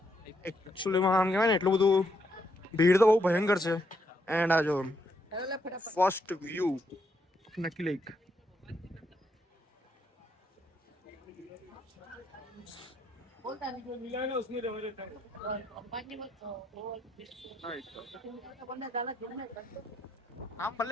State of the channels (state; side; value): normal; both; correlation 0.76